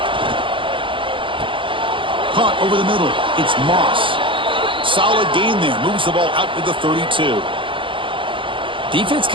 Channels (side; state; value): left; late; 0.25 ms